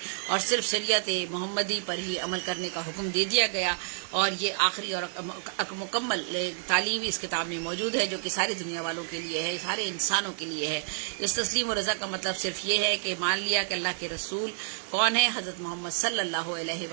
اور صرف شریعت محمدی پر ہی عمل کرنے کا حکم دے دیا گیا. اور یہ آخری اور مکمل تعلیم اس کتاب میں موجود ہے جو کہ ساری دنیا والوں کے لیے ہے، سارے انسانوں کے لیے ہے. اس تسلیم و رضا کا مطلب صرف یہ ہے کہ مان لیا کہ اللہ کے رسول کون ہے، حضرت محمد صلی اللہ علیہ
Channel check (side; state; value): left; silent; 58 dB below the other